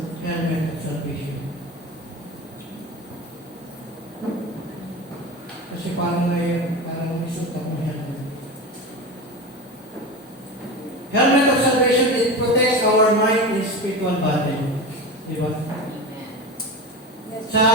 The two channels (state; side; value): normal; both; correlation 0.26